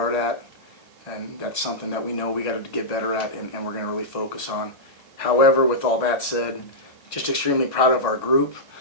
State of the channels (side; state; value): right; late; 2.2 ms